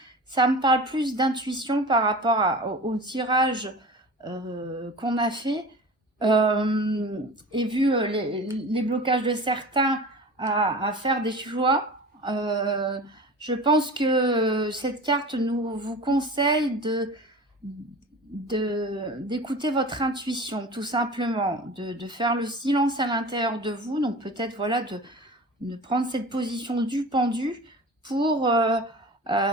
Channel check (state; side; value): normal; both; correlation 0.36